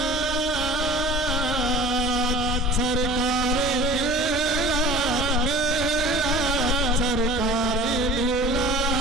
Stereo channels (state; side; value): normal; both; correlation 0.43